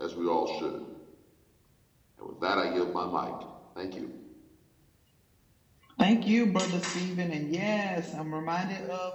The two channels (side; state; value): both; identical; correlation 1.00